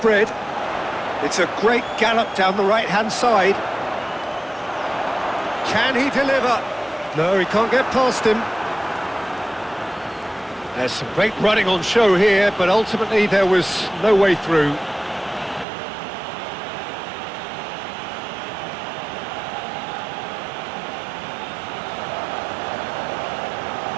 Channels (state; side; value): drops out; left; at 15.7 s